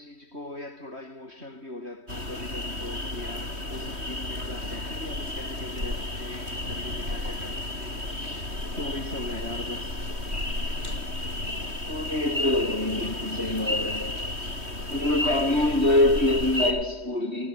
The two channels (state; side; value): late; left; 3.1 ms